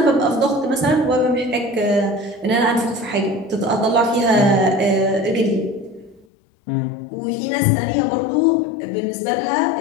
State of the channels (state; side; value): drops out; right; at 6.2 s